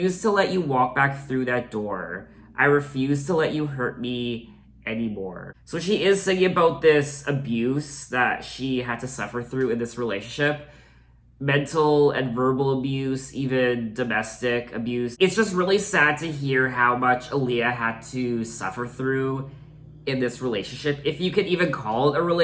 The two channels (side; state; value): both; identical; correlation 1.00